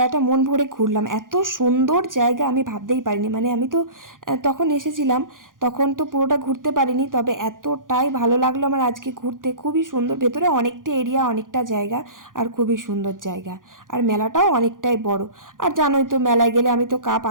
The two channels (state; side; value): late; left; 0.89 ms